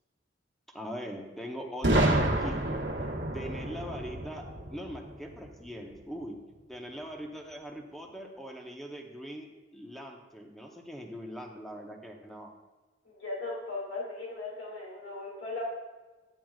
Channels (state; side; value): normal; both; correlation 0.43